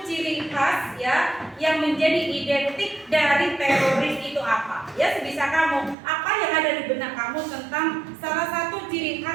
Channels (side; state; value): left; drops out; at 6.0 s